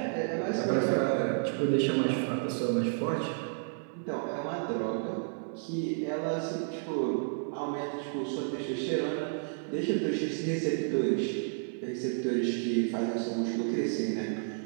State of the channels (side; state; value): left; silent; 55 dB below the other